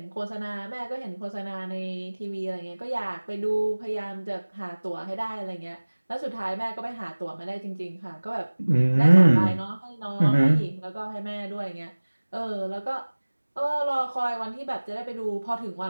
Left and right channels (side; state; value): both; inverted; correlation -1.00